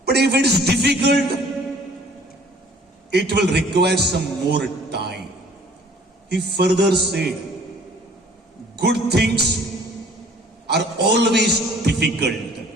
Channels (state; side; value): normal; both; correlation 0.54